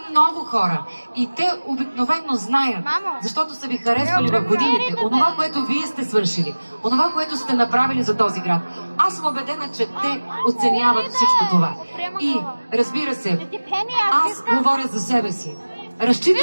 много хора и те обикновено знаят, защото са ви харесвали в годините, онова, което вие сте свършили, онова, което сте направили за този град. Аз съм убедена, че те оценяват всичко това. И, разбира се, аз говоря за себе си.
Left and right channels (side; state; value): both; inverted; correlation -1.00